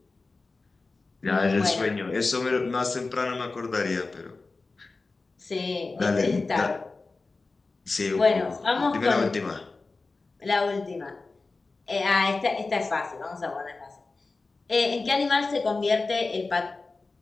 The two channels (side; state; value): right; quieter; 3.7 dB